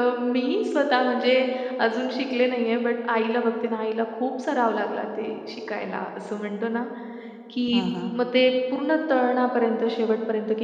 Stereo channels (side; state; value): both; identical; correlation 1.00